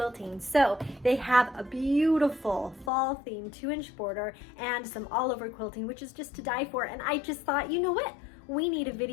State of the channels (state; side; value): drops out; right; at 2.9 s